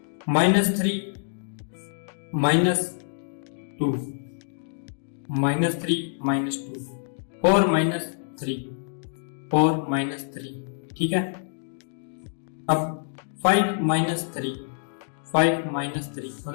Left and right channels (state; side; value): silent; right; digital silence